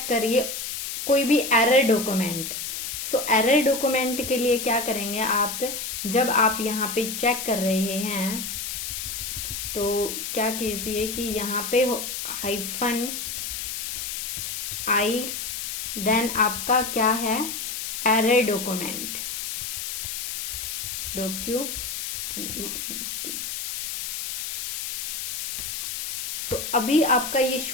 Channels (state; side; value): noise; left; hiss, 4 dB below the sound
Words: करिए कोई भी error document. So error document के लिए क्या करेंगे आप, जब आप यहाँ पे चेक कर रहे हैं तो क्या कीजिए कि यहाँ पे -i, देन आपका क्या है एरर डॉक्यूमेंट, डॉक्यूमेंट। तो अभी आपका ये